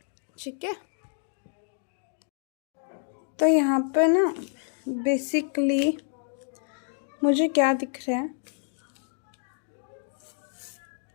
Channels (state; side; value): silent; right; digital silence